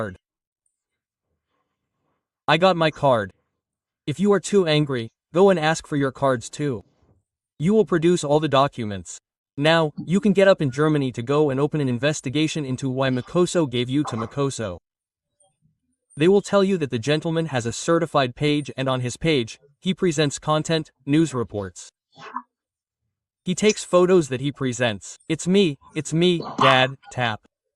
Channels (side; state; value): both; identical; correlation 1.00